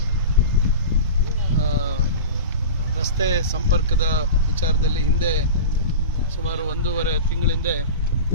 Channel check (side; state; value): both; inverted; correlation -0.31